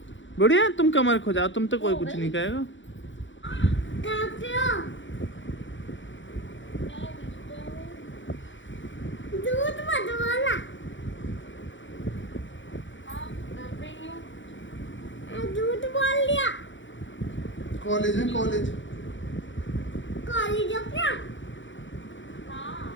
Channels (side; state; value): right; late; 0.55 ms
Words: बढ़िया, तुम कमर खो जाओ, तुम तो कोई कुछ नहीं कहेगा। दूध मत बोला, दूध बोल लिया। कॉलेज है, कॉलेज कॉलेज हो क्या?